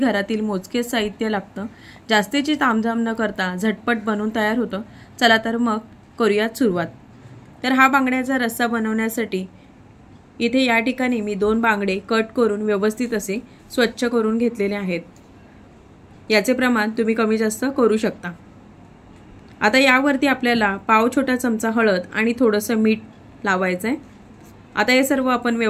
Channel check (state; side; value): identical; both; correlation 1.00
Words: मोजकेच साहित्य लागतं। जास्तीची तामझाम न करता झटपट बनवून तयार होतं। चला तर मग करूयात सुरुवात। तर हा बांगड्याचा रस्सा बनवण्यासाठी इथे या ठिकाणी मी 2 बांगडे कट करून व्यवस्थित असे स्वच्छ करून घेतलेले आहेत। याचे प्रमाण तुम्ही कमी जास्त करू शकता। आता यावरती आपल्याला पाव छोटा चमचा हळद आणि थोडंसं मीठ लावायचं आहे। आता हे सर्व आपण